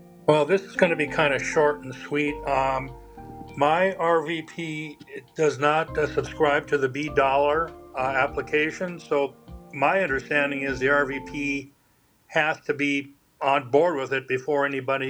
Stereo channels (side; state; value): both; identical; correlation 1.00